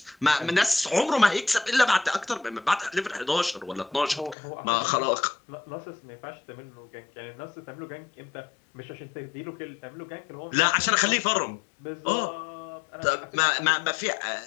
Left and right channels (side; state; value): right; drops out; at 4.4 s